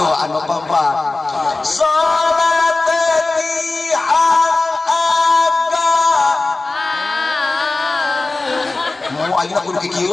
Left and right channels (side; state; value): right; quieter; 3.3 dB